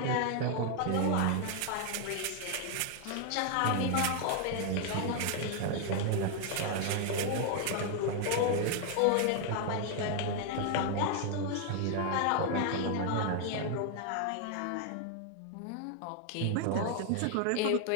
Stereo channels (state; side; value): different; both; correlation 0.00